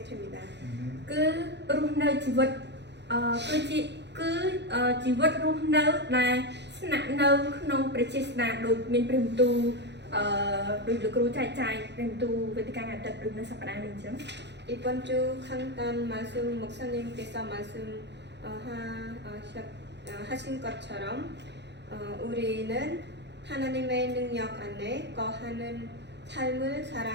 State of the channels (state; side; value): late; left; 0.50 ms